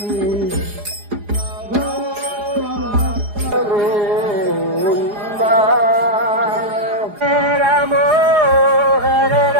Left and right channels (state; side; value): late; left; 4.8 ms